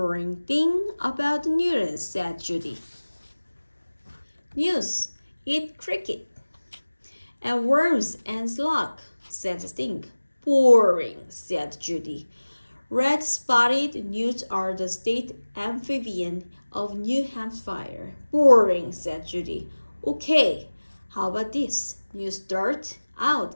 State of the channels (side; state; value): both; inverted; correlation -1.00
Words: thing about Newton, said Judy. Newts eat cricket and worms and slug, said Stink. Boring, said Judy. Red-spotted newts are the state amphibian of New Hampshire. Boring, said Judy. Okay, how about this? Newts start out